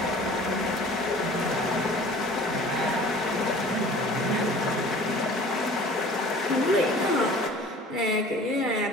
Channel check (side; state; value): both; normal; correlation 0.46